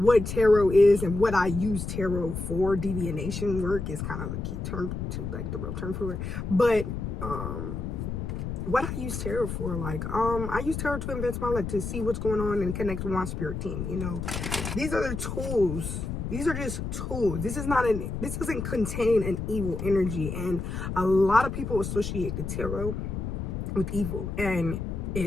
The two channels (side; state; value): left; noise; rumble, 5 dB below the sound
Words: tarot is and what I use tarot for. Divination work is kind of a key term to, like, the real term for it. But what I use tarot for, like, I use tarot to advance my life, to see what's going on and connect with my spirit team. You know, these are the tools. These are just tools. This doesn't contain an evil energy, and a lot of people associate the tarot with evil, and